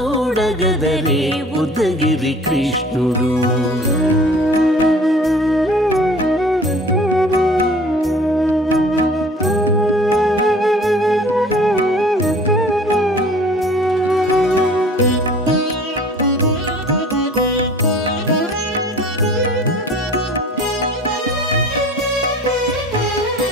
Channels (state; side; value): normal; both; correlation 0.47